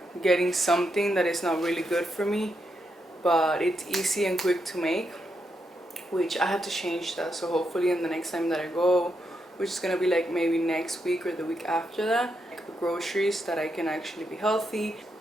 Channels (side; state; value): both; normal; correlation 0.82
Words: getting something that is not really good for me, but it's easy and quick to make, which I have to change that. So hopefully in the next time that I go, which is gonna be like maybe next week or the week after that, like groceries that I can actually be healthy.